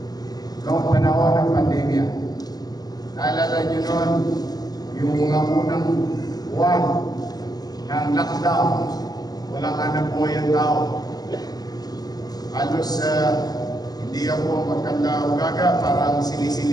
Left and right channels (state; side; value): late; right; 0.19 ms